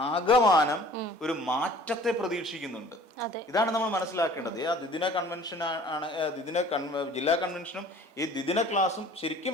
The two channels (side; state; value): both; normal; correlation 0.49